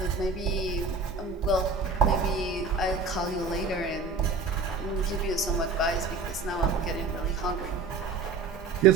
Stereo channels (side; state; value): left; quieter; 4.2 dB